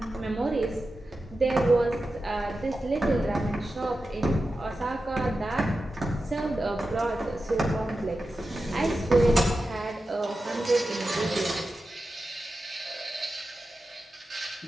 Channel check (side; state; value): both; normal; correlation 0.92